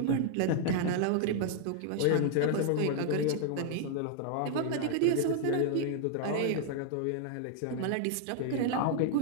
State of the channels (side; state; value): both; different; correlation 0.00